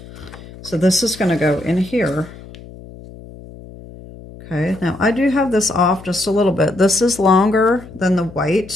so this is going to go in here. Okay, now I do have this off just a little bit. This is longer than the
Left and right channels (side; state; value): left; noise; hum, 17 dB below the sound